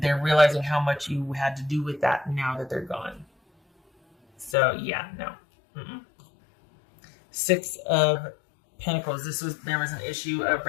they're realizing how much you had to do with that now that they're gone. So, yeah, no. Mm-mm. 6 of Pentacles. There was an issue of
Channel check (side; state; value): right; drops out; at 4.5 s